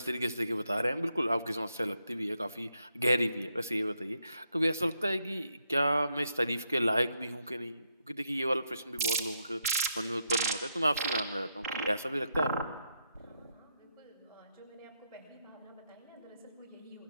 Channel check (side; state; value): both; inverted; correlation -0.80